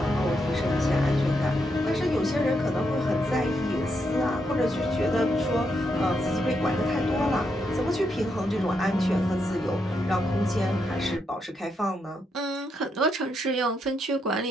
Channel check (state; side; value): normal; both; correlation 0.80